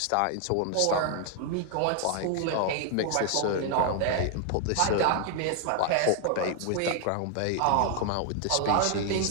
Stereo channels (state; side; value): different; both; correlation 0.00